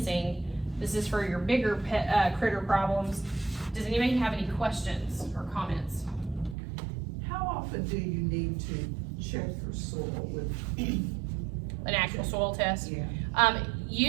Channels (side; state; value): left; drops out; at 6.6 s